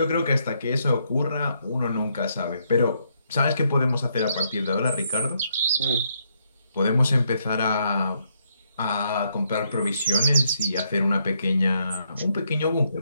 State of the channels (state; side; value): inverted; both; correlation -0.75